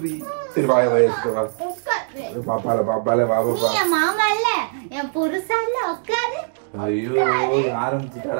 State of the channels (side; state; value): left; silent; digital silence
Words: சரி வாய வாய வா. பாப்பால பாப்பால பாப்பா. நீ மாமா இல்ல, என் புருஷா இல்ல. உட்காரு. ஐயோ